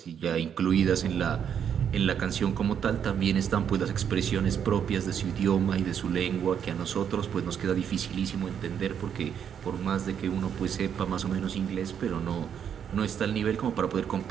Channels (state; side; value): quieter; left; 8.3 dB